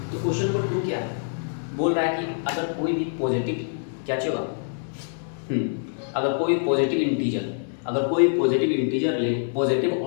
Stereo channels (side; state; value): right; silent; digital silence